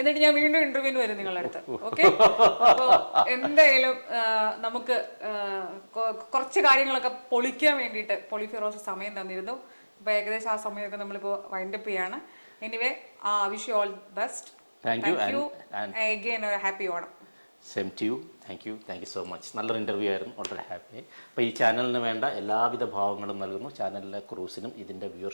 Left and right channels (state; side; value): inverted; both; correlation -1.00